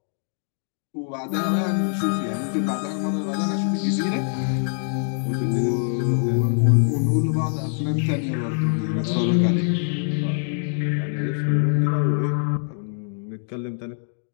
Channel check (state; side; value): silent; right; digital silence